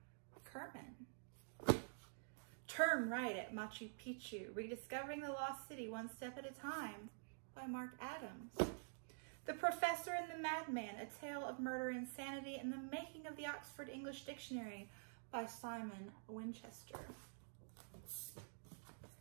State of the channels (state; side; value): silent; left; digital silence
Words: Kerman. Turn Right at Machu Picchu, Rediscovering the Lost City One Step at a Time by Mark Adams. The Professor and the Madman, A Tale of Murder, Insanity, and the Making of the Oxford English Dictionary by Simon Winchester.